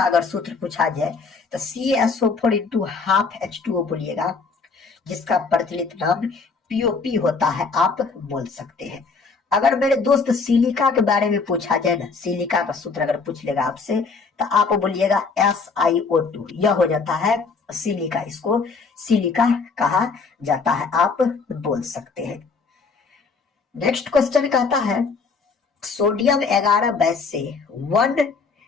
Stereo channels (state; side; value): quieter; right; 4.7 dB